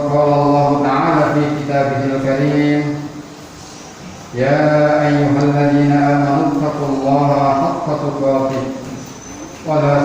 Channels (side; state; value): both; identical; correlation 1.00